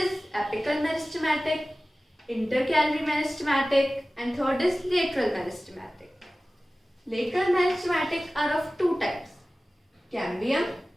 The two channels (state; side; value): normal; both; correlation 0.97